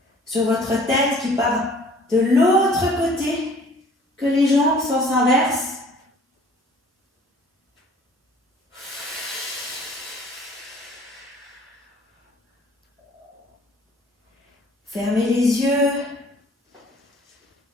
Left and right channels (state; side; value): normal; both; correlation 0.53